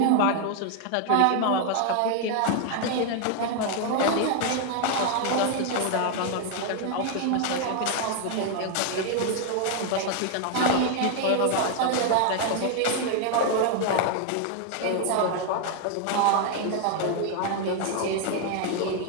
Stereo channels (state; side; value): different; both; correlation 0.00